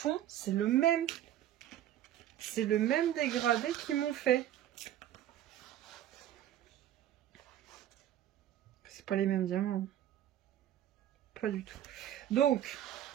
c'est le même. C'est le même dégradé qu'ils m'ont fait. C'est pas les mêmes diamants. Pas du tout. Donc,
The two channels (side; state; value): left; quieter; 11.9 dB